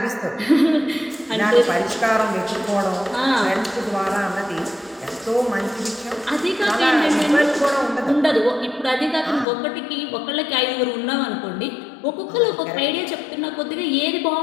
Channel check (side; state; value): right; drops out; at 9.5 s